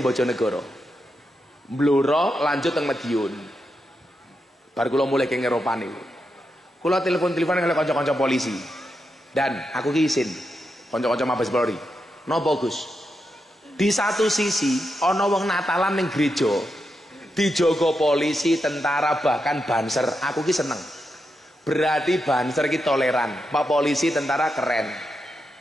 Bojonegoro. Bluro lanjut teng Madiun. Bar kula mulai ke Eropa niku. Kula telepon-teleponan karo kanca-kanca polisi. Dan aku ki isin kanca-kanca Mabes Polri. Napa Gus? Di satu sisi ana wong Natalan ning gereja dijaga polisi, tentara, bahkan banser. Aku ki seneng. Berarti banser ki toleran, Pak polisi, tentara keren.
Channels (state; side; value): normal; both; correlation 0.86